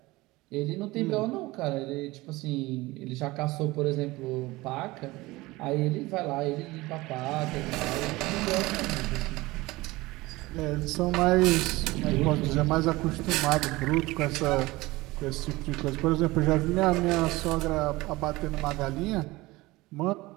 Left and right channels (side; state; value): left; quieter; 20.5 dB